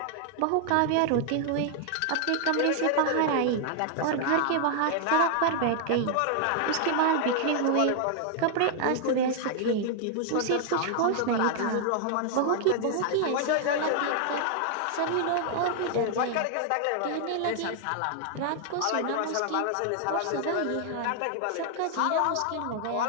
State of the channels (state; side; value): different; both; correlation 0.00